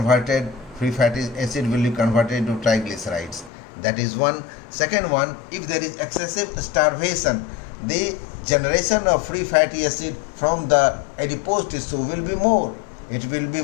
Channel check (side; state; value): right; drops out; at 3.5 s